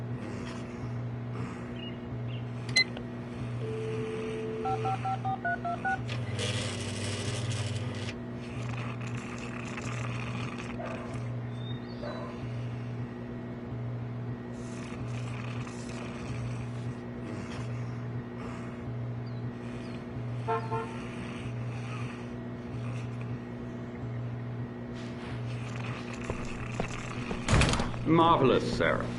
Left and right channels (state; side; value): identical; both; correlation 1.00